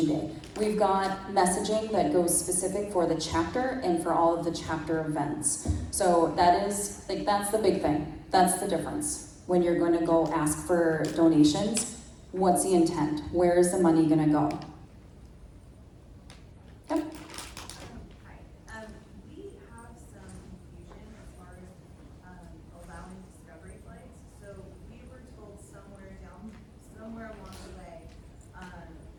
Day. We've got messaging that goes specific for the chapter and for all of the chapter events. So that's the big thing. That's the difference. When you're going to go ask for donations, what's the intent? Where is the money going to go? Yep. Hi. We have some confusion as far as allowing discovery flights. So we were told somewhere along the way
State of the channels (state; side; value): identical; both; correlation 1.00